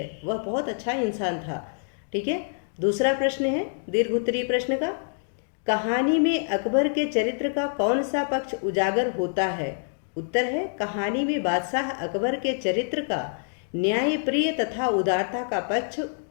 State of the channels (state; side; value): silent; right; digital silence